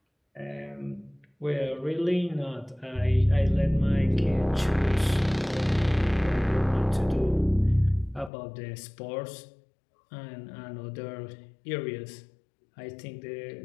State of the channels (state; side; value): drops out; right; at 8.3 s